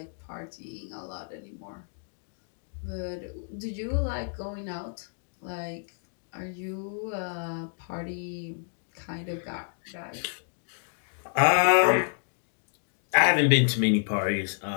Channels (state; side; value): silent; right; digital silence